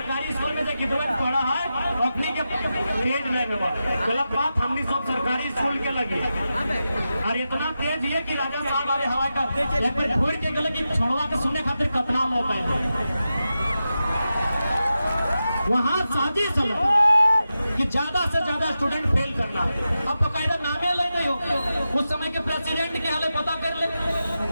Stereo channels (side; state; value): both; inverted; correlation -0.91